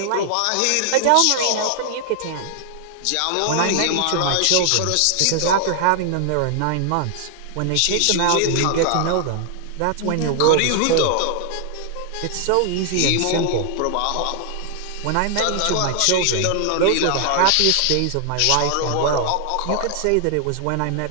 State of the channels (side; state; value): both; different; correlation 0.00